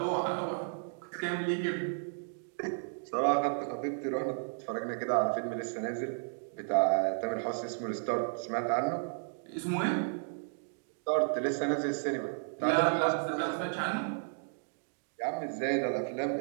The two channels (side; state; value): left; silent; digital silence